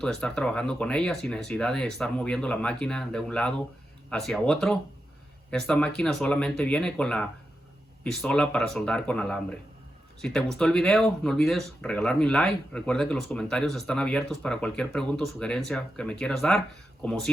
de estar trabajando con ella sin necesidad de estar moviendo la máquina de un lado hacia otro. Esta máquina solamente viene con la pistola para soldar con alambre. Si te gustó el video, no olvides regalarme un like. Recuerda que los comentarios están abiertos para cualquier pregunta o sugerencia que me quieras dar. Como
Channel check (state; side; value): normal; both; correlation 0.88